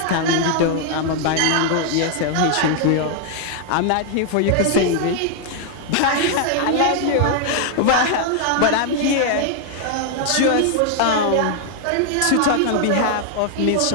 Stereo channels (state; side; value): different; both; correlation 0.00